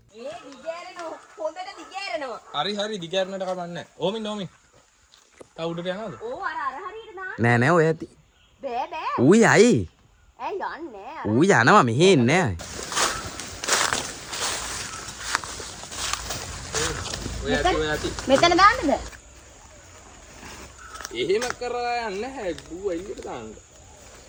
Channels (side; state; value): both; identical; correlation 1.00